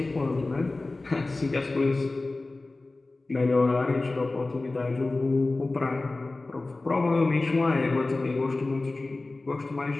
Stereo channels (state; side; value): quieter; right; 3.2 dB